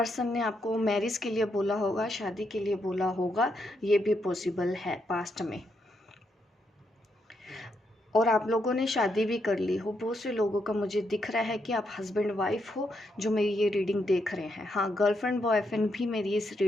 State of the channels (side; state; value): both; normal; correlation 0.79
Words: ने आपको मैरिज के लिए बोला होगा, शादी के लिए बोला होगा, ये भी पॉसिबल है पास्ट में। और आप लोगों ने शादी भी कर ली हो। बहुत से लोगों का मुझे दिख रहा है कि आप हस्बैंड वाइफ हो जो मेरी ये रीडिंग देख रहे हैं। हाँ, गर्लफ्रेंड बॉयफ्रेंड भी मेरी इस